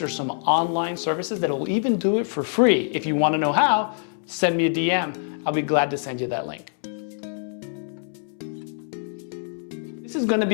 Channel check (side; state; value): right; silent; 62 dB below the other